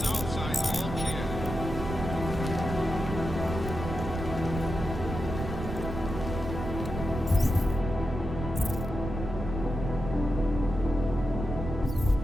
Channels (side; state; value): right; noise; rumble, 6 dB below the sound